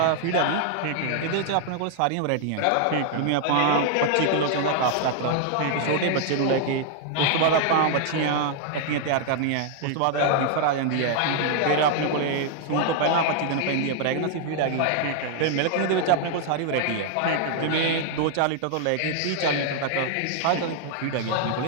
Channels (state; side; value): different; both; correlation 0.00